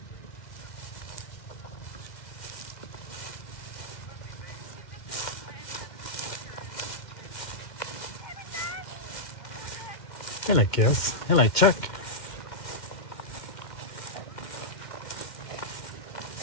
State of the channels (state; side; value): late; right; 2.1 ms